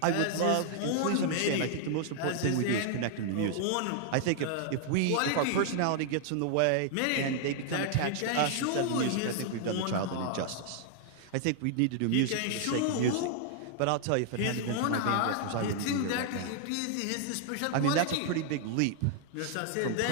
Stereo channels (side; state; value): both; different; correlation -0.01